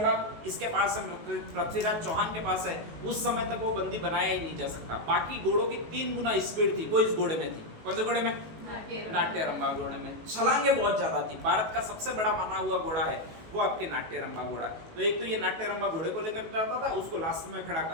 इसके पास है, पृथ्वीराज चौहान के पास है, उस समय तक वो बंदी बनाया ही नहीं जा सकता। बाकी घोड़ों की 3 गुना स्पीड थी, वो इस घोड़े में थी। कौन से घोड़े में? नाट्यरंबा घोड़े में। छलांगे बहुत ज्यादा थी। भारत का सबसे बड़ा माना हुआ घोड़ा है वो आपके नाट्यरंबा घोड़ा। तो एक तो ये नाट्यरंबा घोड़े को लेकर जाता था, उसको लास्ट में खड़ा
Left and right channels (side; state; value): left; late; 19 ms